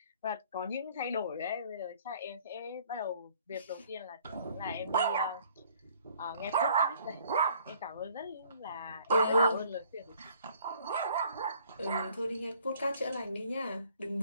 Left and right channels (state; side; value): inverted; both; correlation -0.58